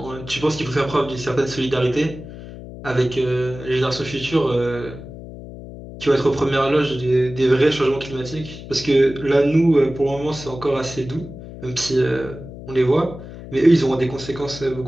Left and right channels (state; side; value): noise; left; hum, 13 dB below the sound